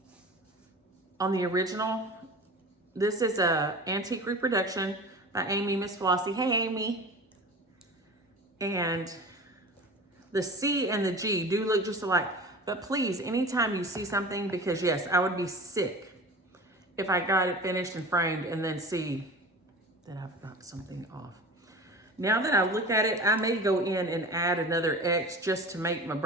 original. This is a antique reproduction by Amy, Miss Flossie. Hey, Amy. And the C and the G do look just alike. But please, anytime you see something, because yes, I would be sick if I got it finished and framed and then see that I've got something off. Now that I look at it, I may go in and add another X just to make my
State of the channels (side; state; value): both; normal; correlation 0.35